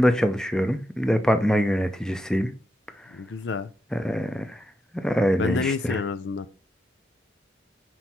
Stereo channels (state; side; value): normal; both; correlation 0.84